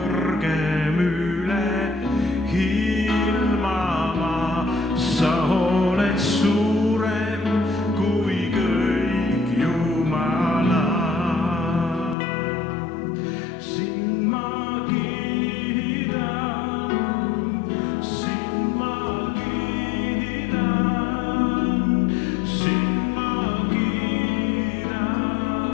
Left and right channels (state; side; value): drops out; right; at 12.2 s